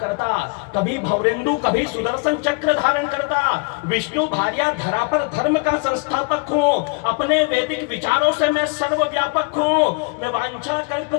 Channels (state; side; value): quieter; right; 34.6 dB